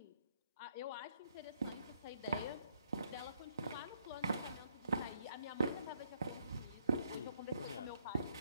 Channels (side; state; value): both; inverted; correlation -0.70